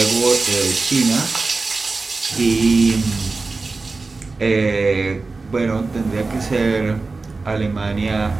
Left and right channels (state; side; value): quieter; left; 3.8 dB